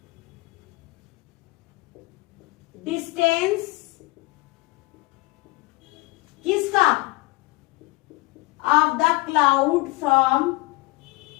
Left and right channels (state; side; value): quieter; right; 22.3 dB